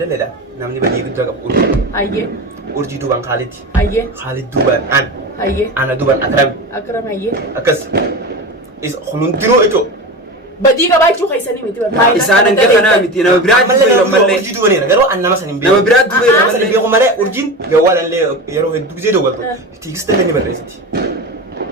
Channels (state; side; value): normal; both; correlation 0.26